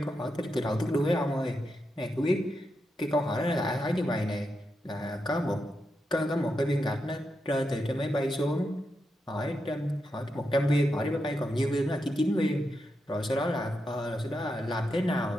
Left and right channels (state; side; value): normal; both; correlation 0.86